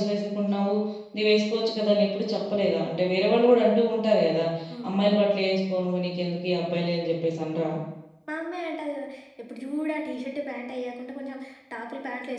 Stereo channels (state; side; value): identical; both; correlation 1.00